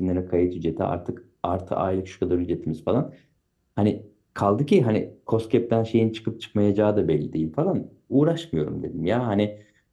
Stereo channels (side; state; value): both; identical; correlation 1.00